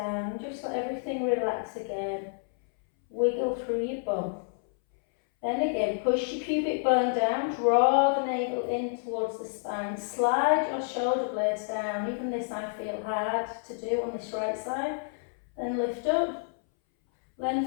Just let everything relax again. Wiggle through your bum. Then again, push your pubic bone down, draw the navel in towards the spine, slide your shoulder blades down. Even this I feel hard to do on this right side. Then lift up,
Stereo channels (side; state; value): right; silent; 59 dB below the other